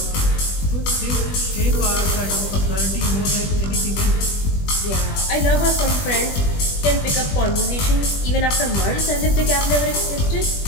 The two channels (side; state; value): right; late; 20 ms